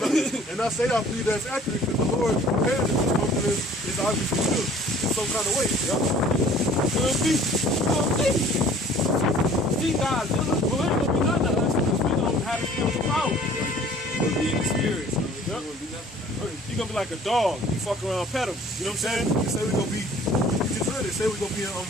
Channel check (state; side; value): normal; both; correlation 0.52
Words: believe that's accurate because the Lord prepared that this something is obviously good in some kind of way. Could be. See, guys, well, ain't gonna be nothing to us because we don't have the spiritual power. We'll be in the spirit, so it won't be nothing. You're gonna be like a dog. You fuck around, pet him. You know what I'm saying? They say we're gonna be. You just heard it. Say we're gonna be a